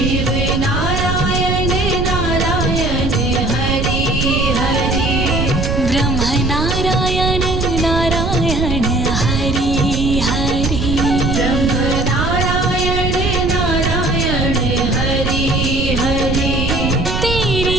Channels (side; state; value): right; noise; rumble, 1 dB below the sound